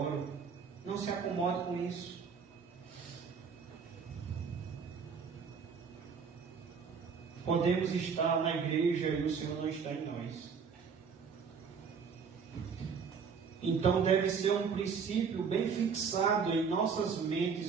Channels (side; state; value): left; quieter; 6.0 dB